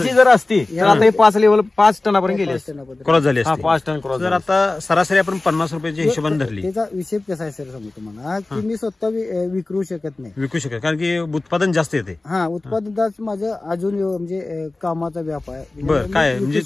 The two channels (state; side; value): quieter; right; 3.1 dB